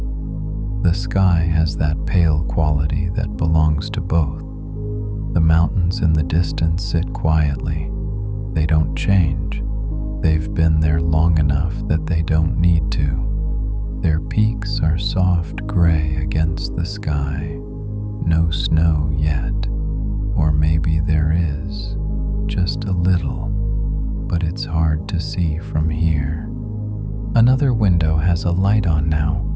The sky has that pale quality that belongs to both. The mountains in the distance sit quietly. They don't change. They've been there long enough that they don't need to. Their peaks are soft gray against the sky. No snow yet. Or maybe there is. Just a little. But it's hard to see from here. Another window has a light on now.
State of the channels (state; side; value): identical; both; correlation 1.00